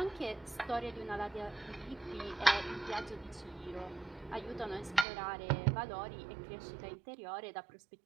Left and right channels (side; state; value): left; drops out; at 5.1 s